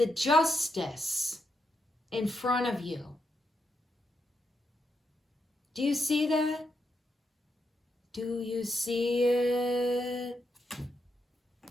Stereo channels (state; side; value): normal; both; correlation 0.82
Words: justice in front of you. Do you see that? Do you see it?